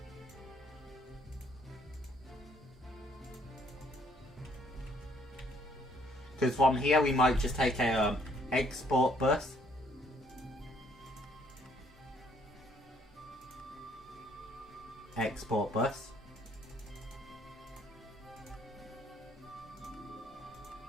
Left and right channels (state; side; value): normal; both; correlation 0.65